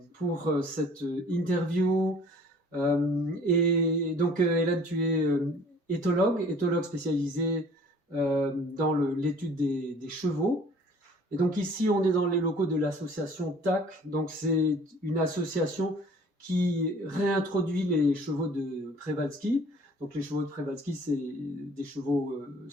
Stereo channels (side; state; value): both; normal; correlation 0.51